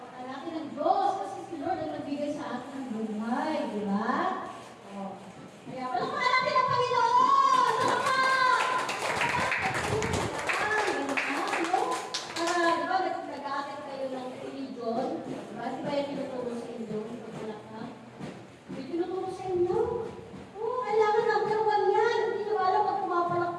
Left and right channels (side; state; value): both; identical; correlation 1.00